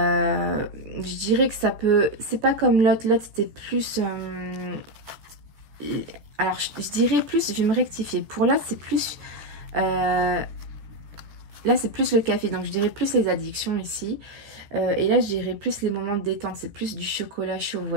dirais que ça peut, c'est pas comme l'autre. L'autre c'était plus, alors je dirais plus, je vais me rectifier. Pour l'autre c'est plus, là c'est plus le café, donc je dirais plus les addictions ici. Et là je dirais plus les moments de détente, c'est plus du chocolat chaud, vous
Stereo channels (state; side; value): late; left; 14 ms